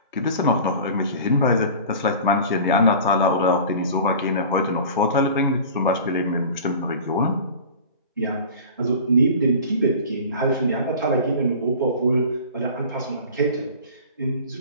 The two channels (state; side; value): inverted; both; correlation -0.39